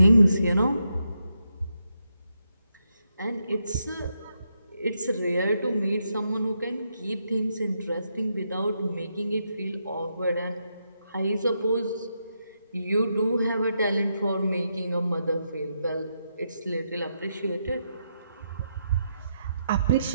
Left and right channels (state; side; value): inverted; both; correlation -0.82